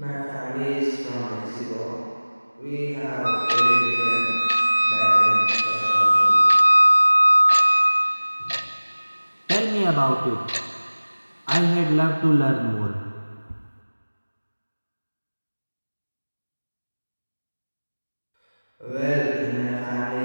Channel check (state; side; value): inverted; both; correlation -1.00